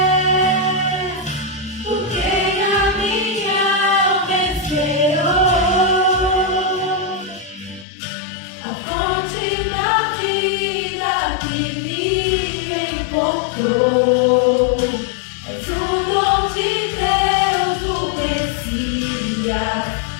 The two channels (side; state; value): right; drops out; at 7.9 s